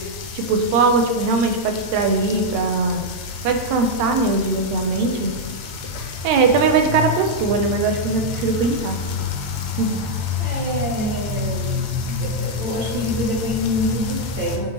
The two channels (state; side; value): late; left; 8.9 ms